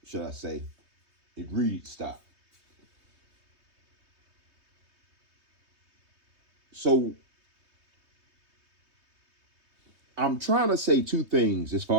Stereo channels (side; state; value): left; late; 3.2 ms